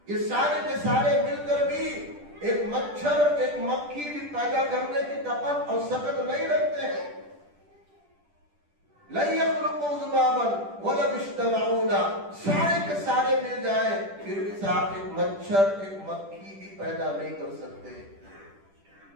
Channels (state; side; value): late; left; 10 ms